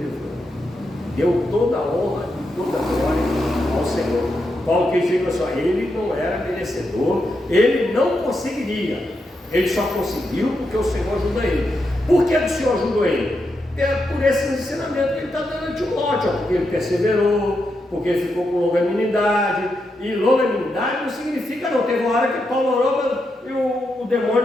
Deu toda a honra e toda a glória ao Senhor. Paulo quis dizer assim, ele não era merecedor, ele não conseguiria. Ele só conseguiu porque o Senhor ajuda ele. Por que o Senhor ajudou ele? É por esse ensinamento que ele está dando a Timóteo, porque ele perseverou, porque ele ficou com longanimidade. E longanimidade não significa não. Teve uma hora que Paulo orou e o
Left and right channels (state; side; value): normal; both; correlation 0.84